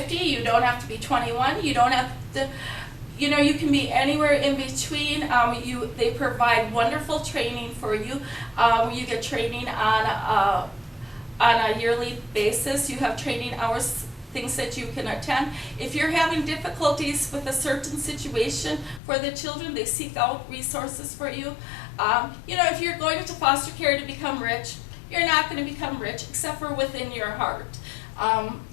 You don't have to be 21. You don't have to. You know, you can be anywhere in between. They provide wonderful training for you. You get training on a yearly basis. You have training hours, things that you can attend. If you're having difficulties with a certain situation for the children, they seek out resources for you. You know, if you're going into foster care to become rich, you're not going to become rich except for within your heart.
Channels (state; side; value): drops out; right; at 19.0 s